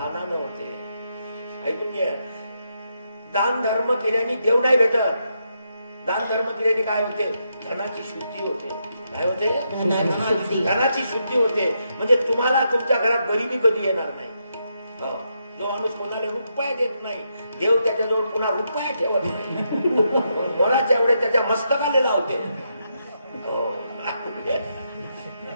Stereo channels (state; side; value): inverted; both; correlation -0.81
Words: होते. ऐकून घ्या, दान धर्म केल्याने देव नाही भेटत. दान धर्म केल्याने काय होते? धनाची शुद्धी होते. काय होते? धनाची शुद्धी. धनाची शुद्धी होते. म्हणजे तुम्हाला तुमच्या घरात गरिबी कधी येणार नाही. हो. जो माणूस कोणाला रुपया देत नाही, देव त्याच्याजवळ पुन्हा रुपया ठेवत नाही. मनाच्या एवढे त्याच्या मस्तकाला लावते. हो.